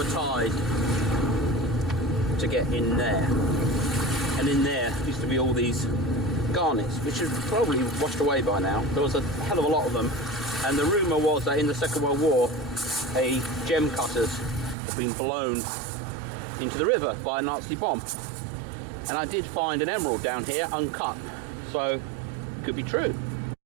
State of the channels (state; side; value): drops out; left; at 14.8 s